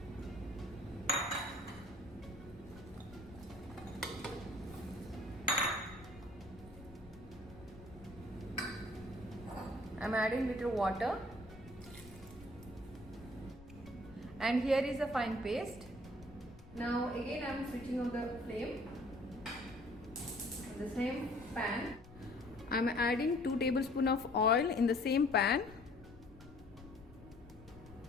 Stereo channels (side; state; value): left; noise; rumble, 19 dB below the sound